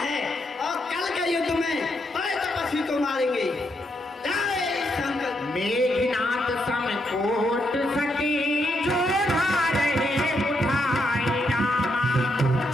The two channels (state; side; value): normal; both; correlation 0.79